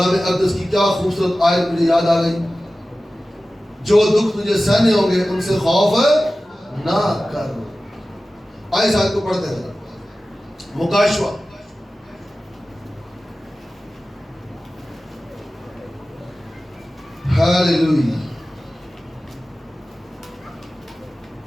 اقدس کی کیا خوبصورت آیت مجھے یاد آ گئی. جو دکھ تجھے سہنے ہوں گے ان سے خوف نہ کر. آئے آیت کو پڑھتے ہیں. مکاشفہ ہاللیلویا.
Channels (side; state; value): both; normal; correlation 0.95